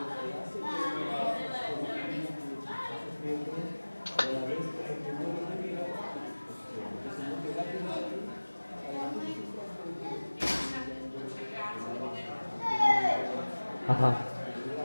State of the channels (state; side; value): inverted; both; correlation -1.00